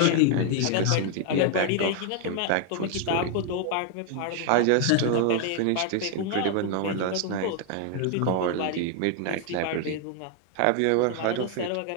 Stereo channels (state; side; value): different; both; correlation 0.00